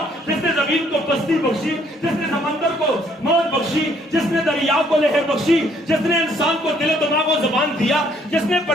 جس نے زمین کو پستی بخشی, جس نے سمندر کو موج بخشی, جس نے دریا کو لہر بخشی, جس نے انسان کو دل و دماغ کو زبان دیا, جس نے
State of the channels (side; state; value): both; normal; correlation 0.65